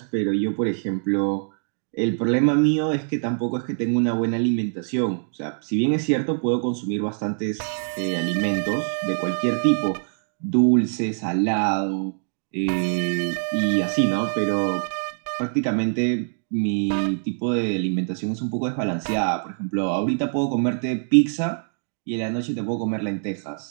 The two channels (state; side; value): silent; left; digital silence